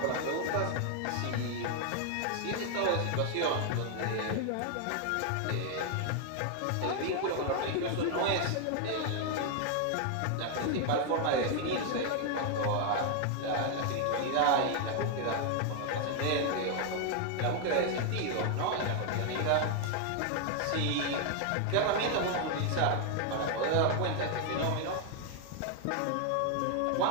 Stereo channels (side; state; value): both; different; correlation 0.00